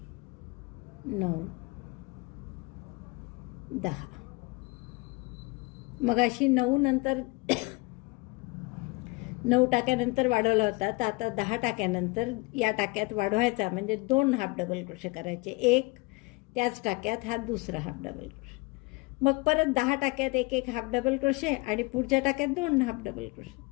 9 10. मग अशी 9 नंतर 9 टाक्यानंतर वाढवला होता. तर आता 10 टाक्यानंतर या टाक्यात वाढवायचा म्हणजे 2 हाफ डबल क्रोशे करायचे. एक त्याच टाक्यात हा दुसरा हाफ डबल क्रोशे. मग परत 10 टाक्यात एक एक हाफ डबल क्रोशे आणि पुढच्या टाक्यात 2 हाफ डबल क्रोशे.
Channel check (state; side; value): quieter; right; 25.6 dB